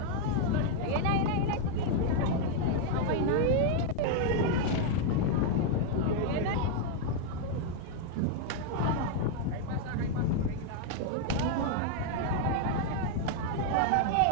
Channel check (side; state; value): both; different; correlation 0.00